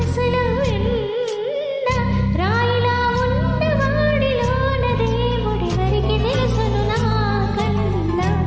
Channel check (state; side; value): identical; both; correlation 1.00